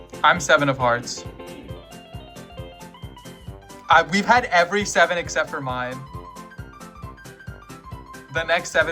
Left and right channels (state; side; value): identical; both; correlation 1.00